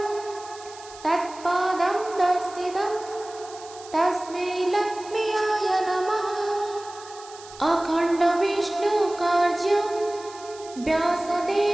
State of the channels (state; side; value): noise; right; hiss, 19 dB below the sound